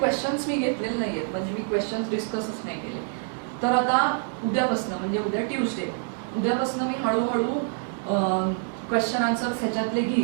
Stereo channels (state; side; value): silent; left; 61 dB below the other